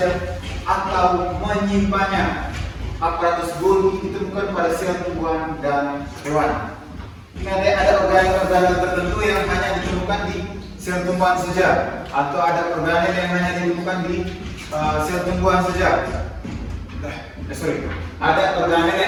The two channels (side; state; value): both; identical; correlation 1.00